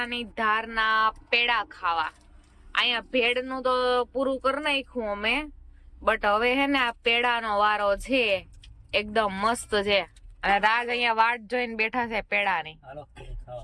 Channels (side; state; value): both; identical; correlation 1.00